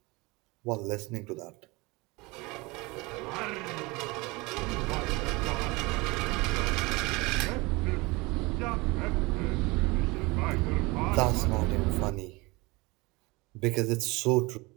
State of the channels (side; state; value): left; quieter; 24.5 dB